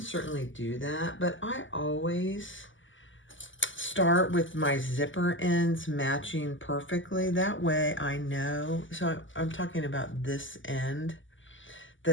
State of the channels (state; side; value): late; right; 0.56 ms